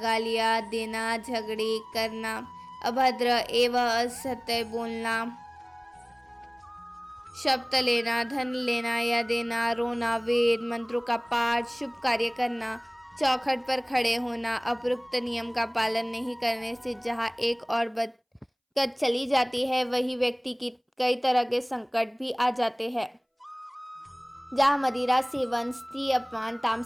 देना, झगड़े करना, अभद्र एवं असत्य बोलना, शब्द लेना, धन लेना या देना, रोना, वेद मंत्रों का पाठ, शुभ कार्य करना, चौखट पर खड़े होना, अपरोक्त नियम का पालन नहीं करने से जहाँ एक और बरकत चली जाती है, वही व्यक्ति की कई तरह के संकट भी आ जाते हैं। जहाँ मदिरा सेवन, स्त्री अपमान,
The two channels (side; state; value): both; identical; correlation 1.00